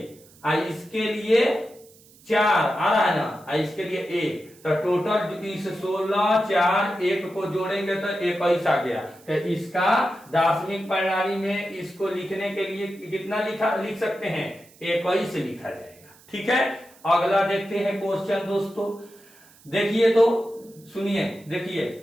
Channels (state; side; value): noise; right; hiss, 26 dB below the sound